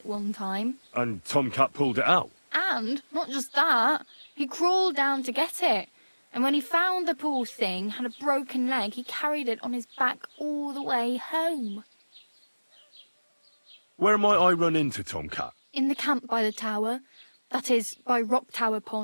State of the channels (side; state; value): both; inverted; correlation -1.00